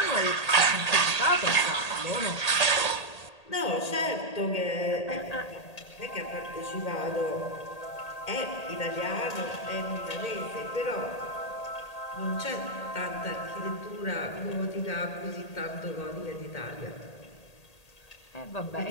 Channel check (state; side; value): late; right; 1.8 ms